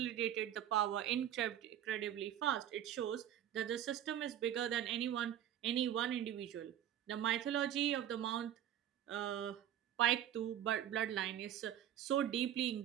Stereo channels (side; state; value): left; quieter; 11.0 dB